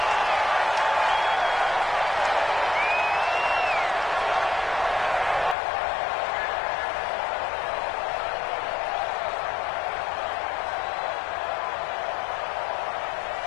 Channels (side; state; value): right; drops out; at 5.6 s